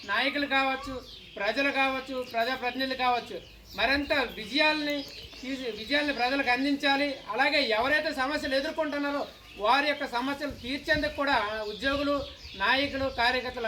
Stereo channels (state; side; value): identical; both; correlation 1.00